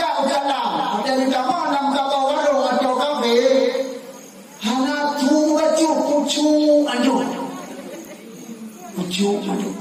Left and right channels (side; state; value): both; identical; correlation 1.00